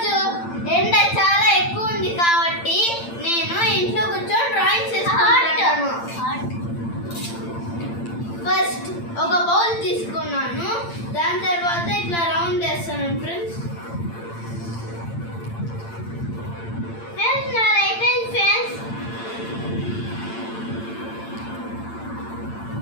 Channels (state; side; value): late; right; 8.8 ms